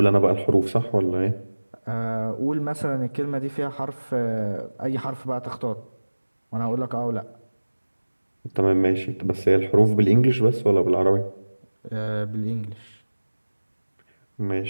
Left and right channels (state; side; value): inverted; both; correlation -1.00